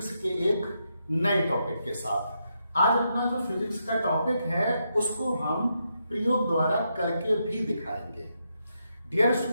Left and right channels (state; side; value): inverted; both; correlation -0.82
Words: के एक नए टॉपिक के साथ। आज अपना जो फिजिक्स का टॉपिक है उसको हम प्रयोग द्वारा करके भी दिखाएंगे। डियर